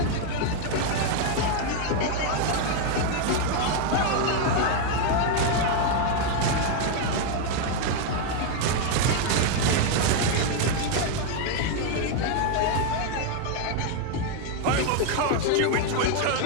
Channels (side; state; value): both; different; correlation 0.01